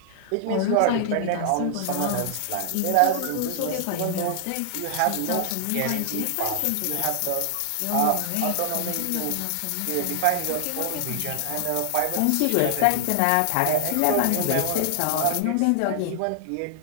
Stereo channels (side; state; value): both; different; correlation 0.00